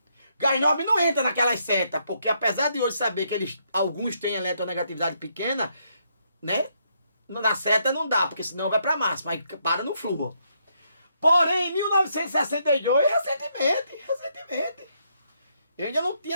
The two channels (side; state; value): both; inverted; correlation -0.75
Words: Gás nobre não entra naquelas setas, porque apesar de hoje saber que alguns têm eletronegatividade pequena, né? Na seta não dá, porque senão vai para máxima, aí para no flúor. Porém, em 1962, recentemente, eu ainda não tinha